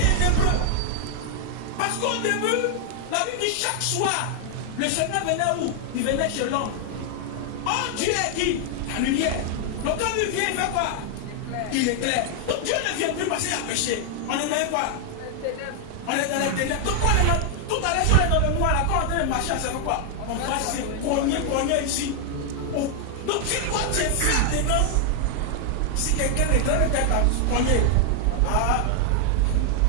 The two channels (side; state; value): both; different; correlation 0.00